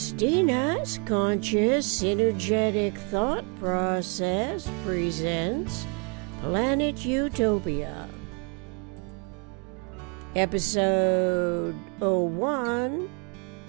conscious synergetic thought process presents Planet Utopia, episode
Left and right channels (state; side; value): quieter; left; 36.7 dB